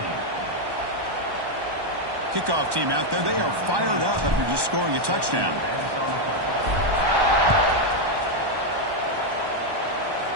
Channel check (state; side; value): late; left; 1.1 ms